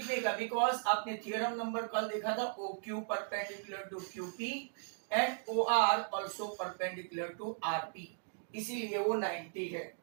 का, बिकॉज आपने थियरम नंबर कल देखा था, OQ perpendicular to QP and OR also perpendicular to RP, इसीलिए वो 90 है।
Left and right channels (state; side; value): silent; left; digital silence